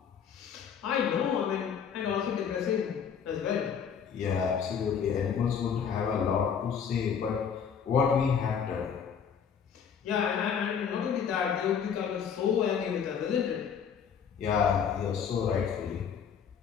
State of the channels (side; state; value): right; quieter; 7.3 dB